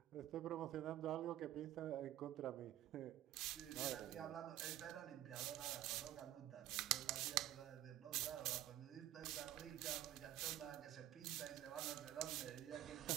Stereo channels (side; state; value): left; quieter; 13.3 dB